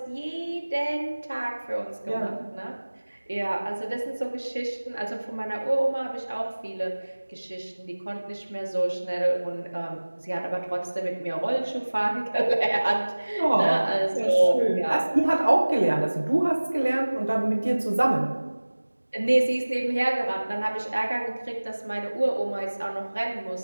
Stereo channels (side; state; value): both; inverted; correlation -1.00